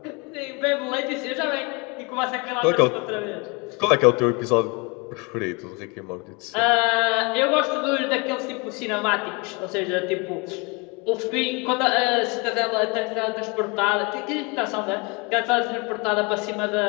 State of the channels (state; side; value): quieter; right; 29.4 dB